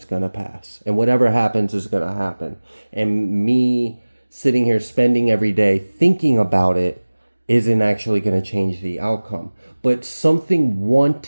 going to pass. And whatever happens is going to happen. And me sitting here spending every day thinking about it isn't actually going to change the outcome. But something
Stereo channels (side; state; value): both; inverted; correlation -1.00